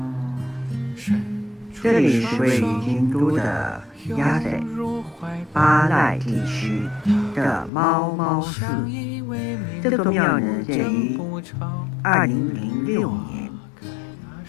这里是位于京都的鸭仔巴赖地区的猫猫寺。这座庙呢建于2006年，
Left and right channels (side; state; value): right; drops out; at 7.7 s